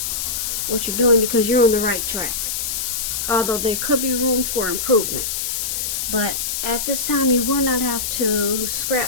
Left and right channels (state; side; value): noise; left; hiss, 2 dB below the sound